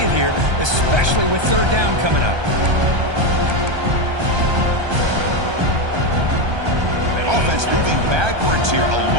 here, especially with 3rd down coming up. Offense moving backwards here, a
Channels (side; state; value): left; late; 1.3 ms